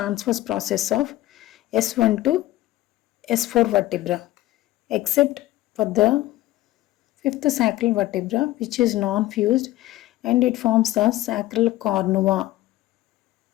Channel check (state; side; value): quieter; right; 16.2 dB